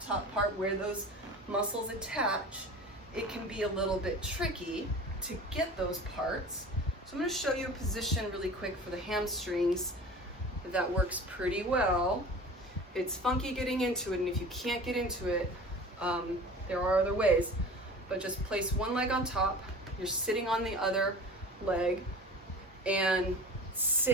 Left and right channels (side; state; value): both; normal; correlation 0.38